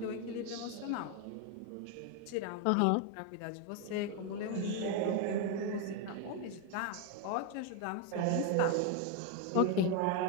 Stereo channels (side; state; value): both; different; correlation 0.01